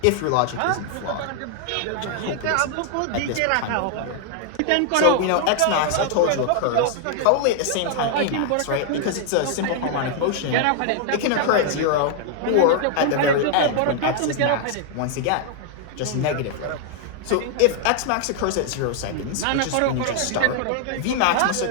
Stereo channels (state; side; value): different; both; correlation 0.00